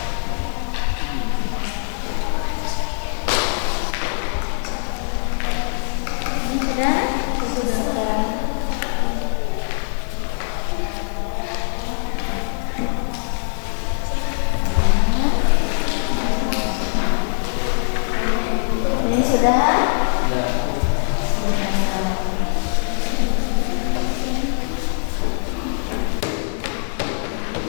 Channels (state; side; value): silent; right; 64 dB below the other